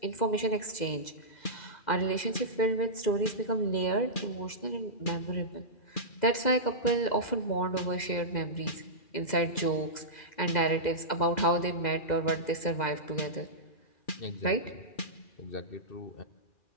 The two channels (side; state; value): right; late; 2.0 ms